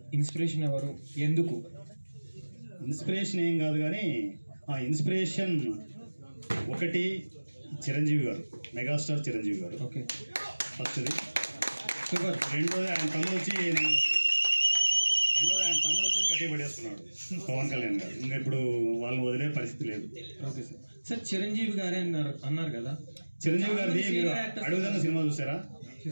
ఇన్స్పిరేషన్ ఎవరు, ఎందుకు? ఇన్స్పిరేషన్ ఏం కాదు కానీ ఇన్స్పిరేషన్ ఒకటి చిరంజీవి గారు, మెగాస్టార్ చిరంజీవి గారు. ఓకే, ఫస్ట్ది. సూపర్. రెండోది ఆయన తమ్ముడు వచ్చేసి గట్టి పడేస్తున్నాడు పవన్ కళ్యాణ్ గారు. ఇంకా ఇప్పుడు వాళ్ళని వదిలే పరిస్థితి లేదు. Okay sir. సార్ చిరంజీవి గారే అన్నారు కదా, చిరంజీవి గారిది మీరు అడుగుదన్న సినిమా చూసారా?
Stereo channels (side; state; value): both; inverted; correlation -1.00